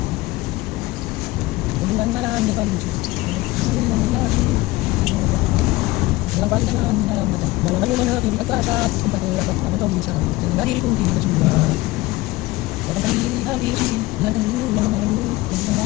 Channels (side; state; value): right; quieter; 19.5 dB